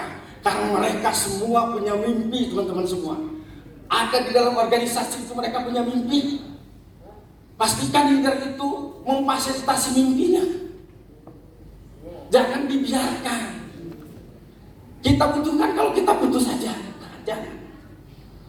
Karena mereka semua punya mimpi, teman-teman semua. Ada di dalam organisasi itu mereka punya mimpi. Pastikan leader itu memfasilitasi mimpinya. Jangan dibiarkan. Kita butuhkan kalau kita butuh saja. Jangan.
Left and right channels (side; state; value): both; identical; correlation 1.00